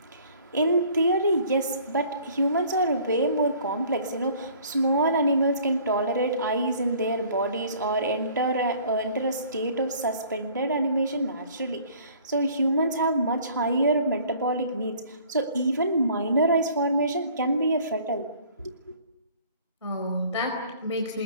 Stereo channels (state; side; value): inverted; both; correlation -0.53